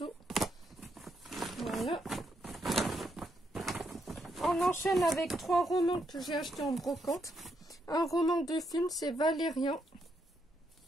Voilà. On enchaîne avec 3 romans que j'ai achetés en brocante. Un roman de film, c'est Valérian.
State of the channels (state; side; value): normal; both; correlation 0.78